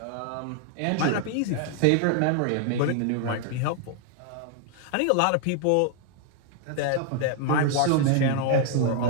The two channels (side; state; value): both; different; correlation 0.00